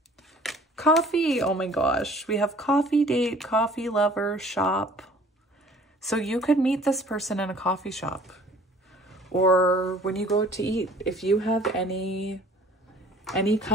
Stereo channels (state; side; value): normal; both; correlation 0.52